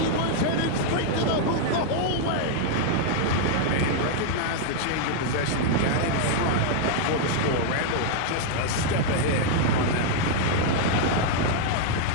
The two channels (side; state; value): both; different; correlation -0.01